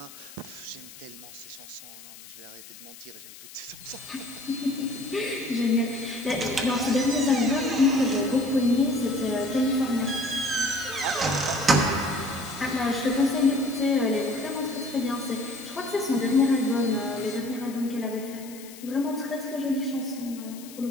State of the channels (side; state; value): left; noise; hiss, 17 dB below the sound